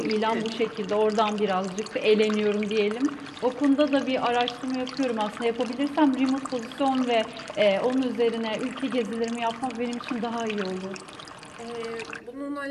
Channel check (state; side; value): identical; both; correlation 1.00